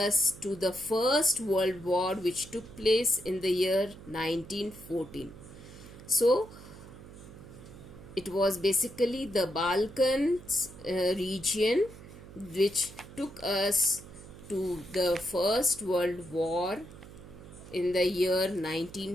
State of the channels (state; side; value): noise; right; hum, 17 dB below the sound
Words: to the First World War, which took place in the year 1914. So it was basically the Balkans region which took us to the First World War in the year